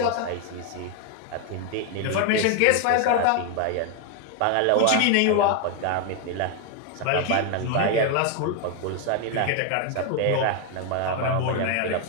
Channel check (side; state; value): both; different; correlation 0.01